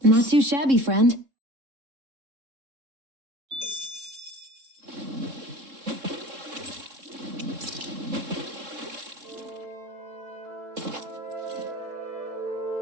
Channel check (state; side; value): late; left; 3.7 ms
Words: Not too shabby, friend.